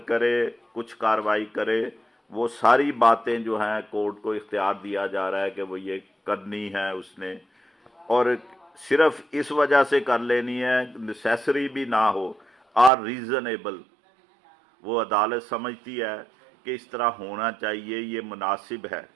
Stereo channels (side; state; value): left; drops out; at 12.9 s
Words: کرے، کچھ کارروائی کرے، وہ ساری باتیں جو ہیں کورٹ کو اختیار دیا جا رہا ہے کہ وہ یہ کرنی ہے اس نے، اور صرف اس وجہ سے کر لینی ہے، نیسیسری بھی نہ ہو، آر ریزنیبل، وہ عدالت سمجھتی ہے کہ اس طرح ہونا چاہیے، یہ مناسب ہے۔